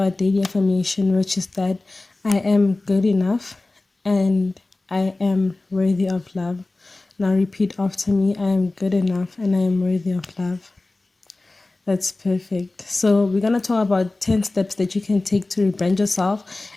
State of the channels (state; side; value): quieter; right; 3.1 dB